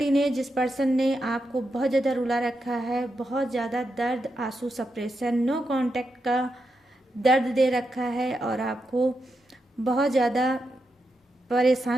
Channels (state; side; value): normal; both; correlation 0.86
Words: ने, जिस पर्सन ने आपको बहुत ज़्यादा रुला रखा है, बहुत ज़्यादा दर्द, आंसू, सप्रेशन, नो कांटेक्ट का दर्द दे रखा है और आपको बहुत ज़्यादा